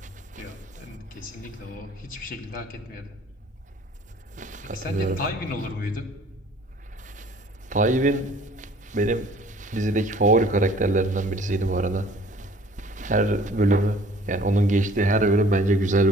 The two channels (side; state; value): both; normal; correlation 0.53